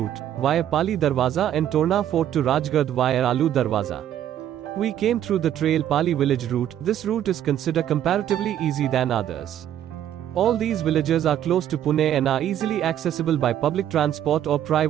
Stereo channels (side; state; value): left; quieter; 10.9 dB